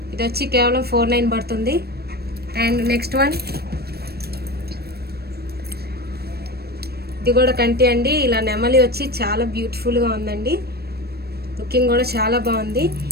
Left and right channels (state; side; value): late; left; 0.46 ms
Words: ఇది వచ్చి కేవలం 4,900 పడుతుంది. అండ్ నెక్స్ట్ వన్ ఇది కూడా కంటి అండి. ఇలా నెమలి వచ్చి చాలా బ్యూటిఫుల్గా ఉందండి, లుకింగ్ కూడా చాలా బాగుంది.